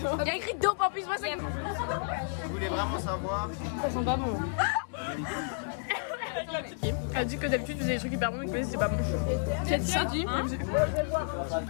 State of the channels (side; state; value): right; silent; 57 dB below the other